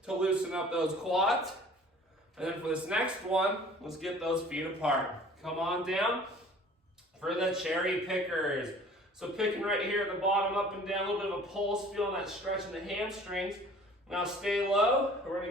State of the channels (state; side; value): normal; both; correlation 0.49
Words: to loosen up those quads. And then for this next one, let's get those feet apart. Come on down for the cherry pickers. So picking right here at the bottom, up and down, a little bit of a pulse, feeling that stretch in the hamstrings. Now stay low. We're gonna